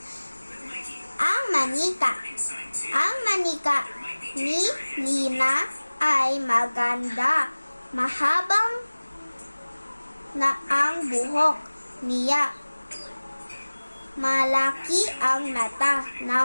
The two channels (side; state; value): both; inverted; correlation -1.00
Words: Ang manika. Ang manika ni Lina ay maganda. Mahabang na ang buhok niya. Malaki ang mata